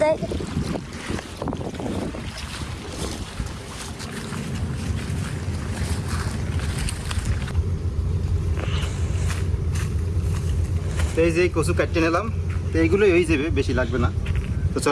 দেয়। তো এই যে কচু কাটতে নিলাম, তো এইগুলোই হয়ে যাবে, বেশি লাগবে না। তো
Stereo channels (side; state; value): both; identical; correlation 1.00